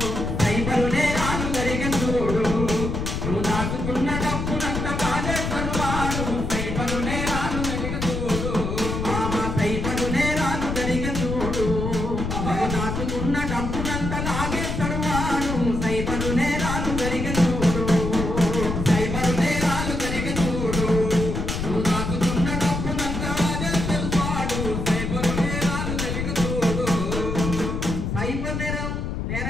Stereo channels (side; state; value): left; noise; rumble, 3 dB below the sound